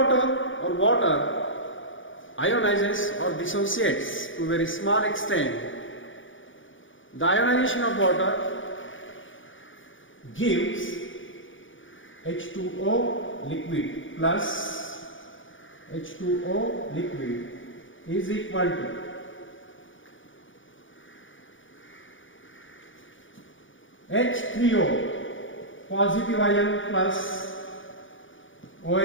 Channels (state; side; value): late; right; 0.57 ms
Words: or water ionizes or dissociates to a very small extent. The ionization of water gives H2O liquid plus H2O liquid is equal to H3O positive ion plus OH